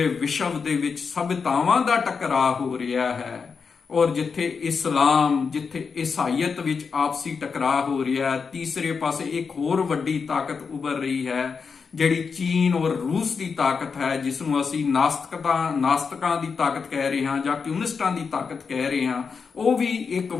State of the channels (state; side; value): quieter; right; 5.5 dB